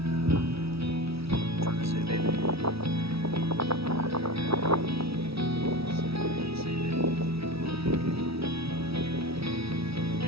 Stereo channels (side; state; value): left; late; 0.76 ms